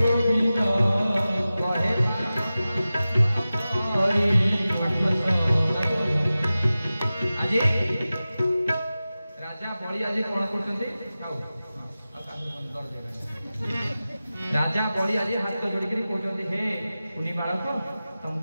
कहे आज राजा बड़ी आज कौन करछन्ती राजा बड़ी आज हाथ जोड़ी कहते हे कुनी बालक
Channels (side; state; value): both; inverted; correlation -0.95